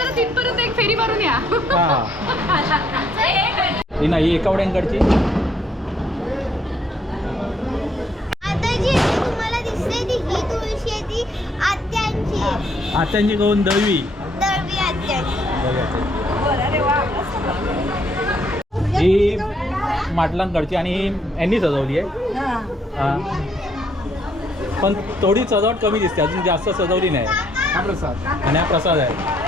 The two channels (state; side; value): normal; both; correlation 0.69